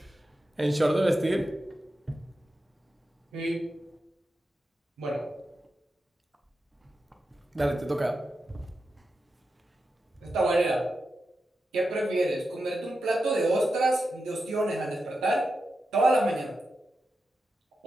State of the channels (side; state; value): both; normal; correlation 0.89